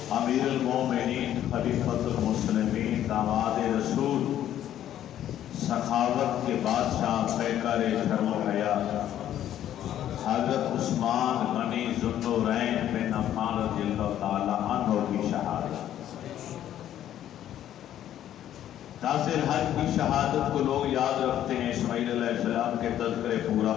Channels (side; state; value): right; quieter; 11.4 dB